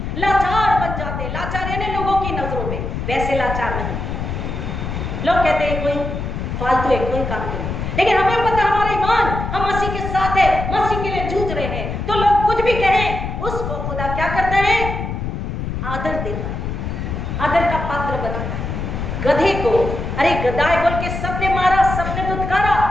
लाचार बन जाते हैं, लाचार यानी लोगों की नजरों में, वैसे लाचार नहीं। लोग कहते हैं कोई फालतू है, कोई काम नहीं, लेकिन हमें पता हमारा ईमान, हम मसीह के साथ है, मसीह के लिए जूझ रहे हैं, तो लोग कुछ भी कहें, उसको खुदा क्या करता है? आदर देता है, आदर का पात्र बनाता है। गधे को अरे गधाए बोल के सबने मारा, सबने दुत्कारा,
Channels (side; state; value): left; noise; rumble, 4 dB below the sound